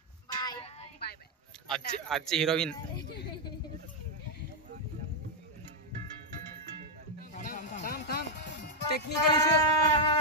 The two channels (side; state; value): both; normal; correlation 0.00